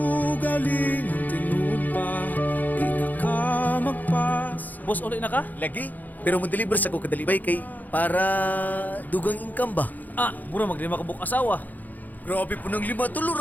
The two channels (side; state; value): right; late; 0.083 ms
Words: tinud pa di na ka magpas. Boss, ulit na ka? Lagi? Pero mo-deliver sa ko kadalibay kay para dugang income ba? Mura maglima ka buk asawa. Grabe po ng 5 tulo,